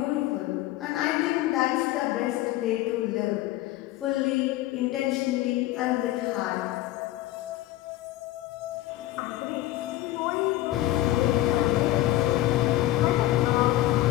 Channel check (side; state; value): right; quieter; 15.7 dB